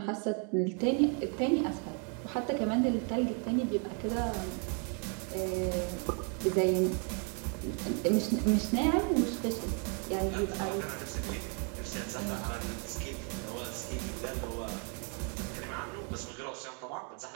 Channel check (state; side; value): quieter; left; 39.1 dB